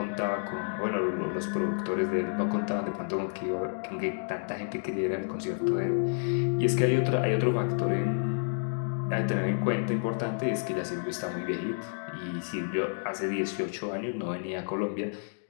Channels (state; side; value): silent; right; digital silence